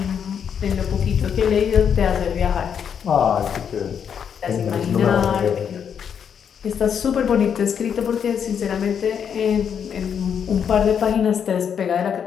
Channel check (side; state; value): right; quieter; 7.7 dB